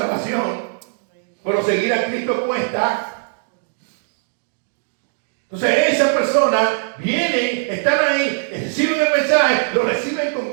pero seguir a Cristo cuesta. Entonces esas personas vienen, están ahí, reciben el mensaje, lo reciben con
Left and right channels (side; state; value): left; silent; digital silence